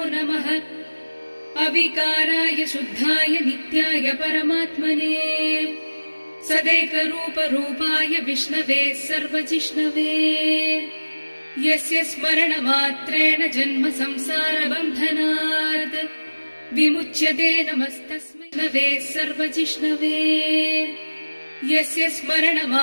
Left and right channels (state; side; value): inverted; both; correlation -1.00